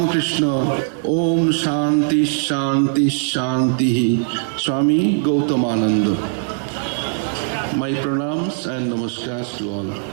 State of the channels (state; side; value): silent; left; 66 dB below the other